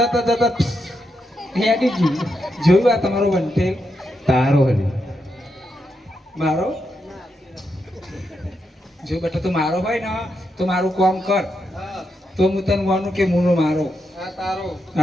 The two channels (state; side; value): normal; both; correlation 0.83